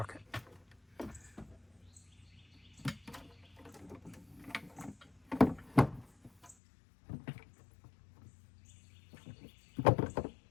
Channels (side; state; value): right; drops out; at 6.6 s